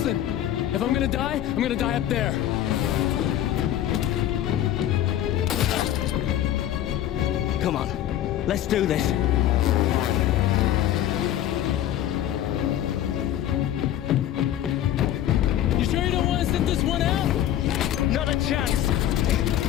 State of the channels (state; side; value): quieter; right; 11.9 dB